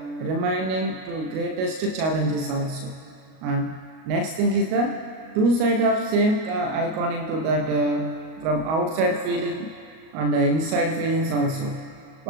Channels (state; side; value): late; left; 38 ms